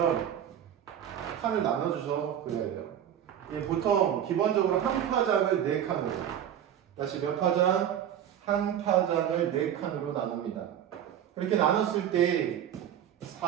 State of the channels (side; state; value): left; quieter; 10.0 dB